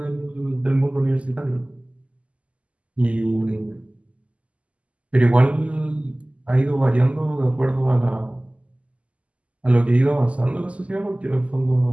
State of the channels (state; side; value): late; left; 0.063 ms